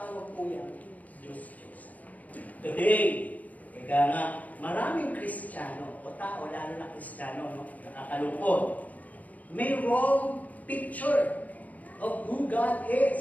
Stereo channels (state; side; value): late; right; 0.076 ms